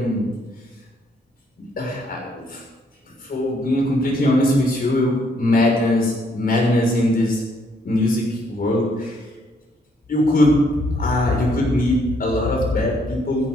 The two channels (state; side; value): normal; both; correlation 0.70